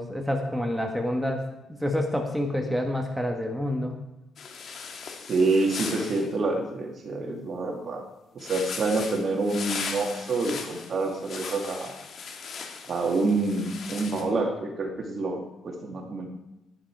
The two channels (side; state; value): both; normal; correlation 0.78